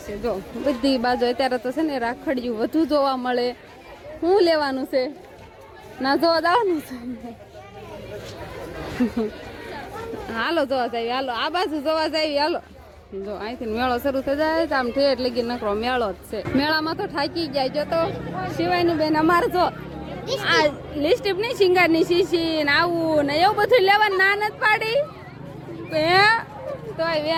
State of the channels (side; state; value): both; identical; correlation 1.00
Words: જો બધી બાજુ અત્યારે તો છે ને રાખડિયું વધુ જોવા મળે. શું લેવાનું છે? ના જોવા જવાનું છે. હાલો જોવા જાય. હાલો આ બાજુ જોવા જાય. હાલો જો અહીંથી મેળો શરૂ થઈ જાય આમ ઠેઠ લગી નકરો મેળો જ છે. મેળામાં તો થાકી જાય. જો તો શિવાની બેન અમારે જો આ લિપસ્ટિક નહીં શિંગારની શીશી ને આવું ને એવું બધું લેવાનું ના નથી પાડી તોય